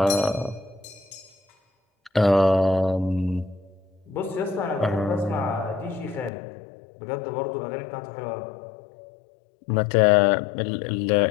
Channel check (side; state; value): right; drops out; at 6.3 s